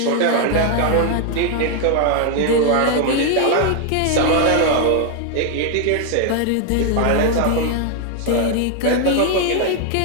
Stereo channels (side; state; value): both; different; correlation 0.00